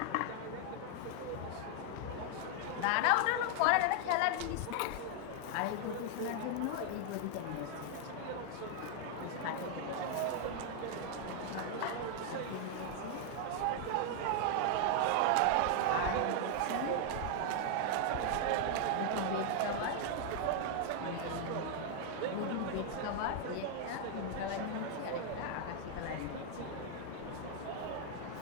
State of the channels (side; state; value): both; different; correlation 0.00